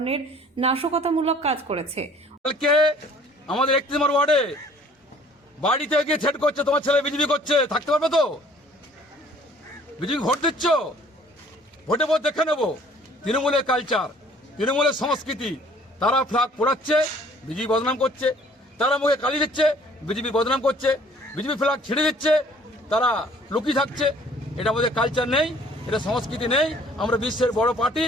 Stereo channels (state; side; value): normal; both; correlation 0.55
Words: নাশকতামূলক কাজ করেছে। কালকে আমাদের 31 নম্বর ওয়ার্ডে বাড়িতে গিয়ে থ্রেট করছে, তোমার ছেলে বিজেপি করছে, থাকতে পারবে তো? বিজেপি ভোট দিচ্ছ, ভোটে ভোট দেখে নেবো। তৃণমূলের কালচার, তৃণমূলের সংস্কৃতি, তারা ফ্ল্যাগ পোড়াচ্ছে, বিজেপি বদনাম করছে। তারা মুখে কালি দিচ্ছে, বিজেপি বদনাম করছে। বিজেপি ফ্ল্যাগ ছেড়ে দিচ্ছে, তারা লুকিয়ে থাকছে। এটা আমাদের কালচার নেই, এটা সংস্কৃতি নেই। আমরা বিশ্বের বড় পার্টি,